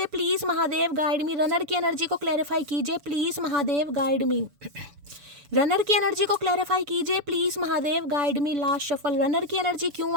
please Mahadev, guide me. Runner की एनर्जी को क्लैरिफाई कीजिए please Mahadev, guide me. Runner की एनर्जी को क्लैरिफाई कीजिए please Mahadev, guide me. Last shuffle. Runner की एनर्जी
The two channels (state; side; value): late; left; 7.0 ms